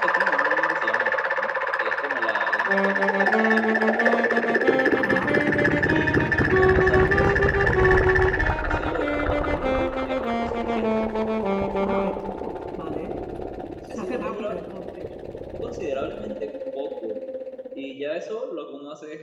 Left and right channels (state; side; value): identical; both; correlation 1.00